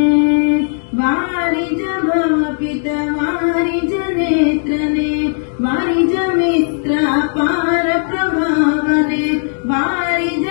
ವಾರಿ ಭವ ಪಿತ ವಾರಿ ನೇತ್ರನೆ ವಾರಿ ಮಿತ್ರ ಪಾರ ಪ್ರಭಾವನೆ ವಾರಿ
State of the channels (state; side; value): silent; right; 69 dB below the other